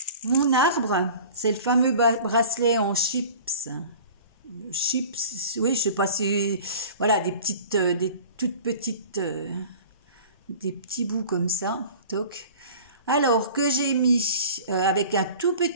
Mon arbre, c'est le fameux bracelet en chips chips, oui, je sais pas si, voilà, des toutes petites, des petits bouts comme ça, toc. Alors que j'ai mis avec un tout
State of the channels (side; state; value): both; inverted; correlation -0.42